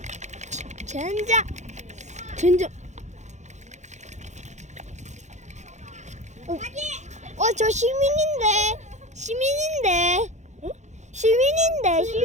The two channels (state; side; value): late; left; 0.34 ms